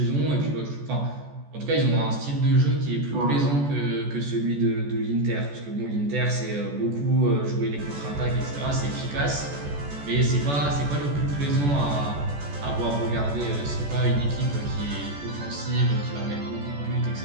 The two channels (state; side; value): late; left; 14 ms